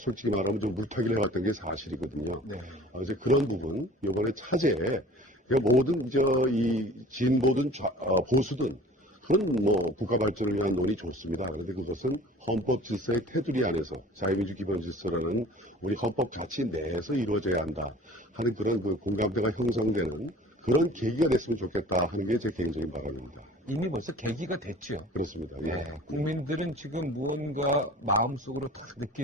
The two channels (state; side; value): normal; both; correlation 0.46